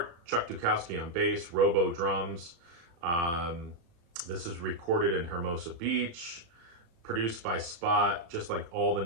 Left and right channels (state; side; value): late; left; 35 ms